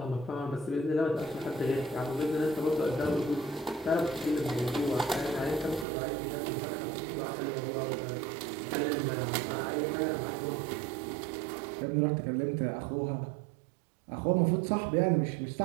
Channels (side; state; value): left; drops out; at 5.9 s